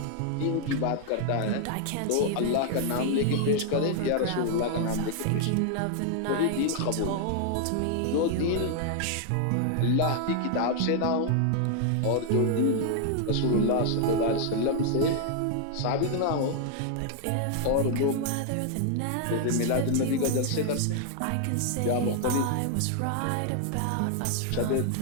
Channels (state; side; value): different; both; correlation 0.00